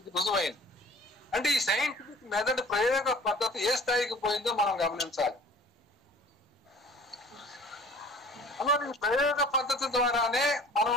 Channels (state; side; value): normal; both; correlation 0.48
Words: రుజువైంది. అంటే ఈ సైంటిఫిక్ మెథడ్ ప్రయోగ పద్ధతి ఏ స్థాయికి పోయిందో మనం గమనించాలి. అలా ఈ ప్రయోగ పద్ధతి ద్వారానే మనం